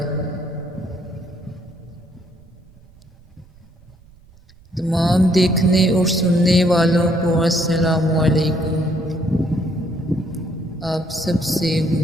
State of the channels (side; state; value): right; noise; rumble, 27 dB below the sound